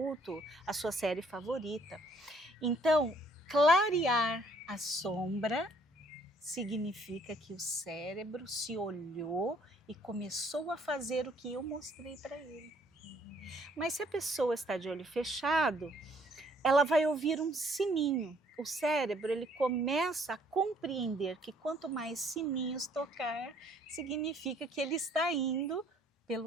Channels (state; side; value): normal; both; correlation 0.63